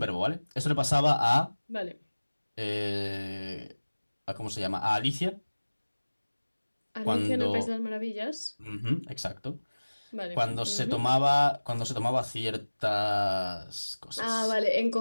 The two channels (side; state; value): both; inverted; correlation -1.00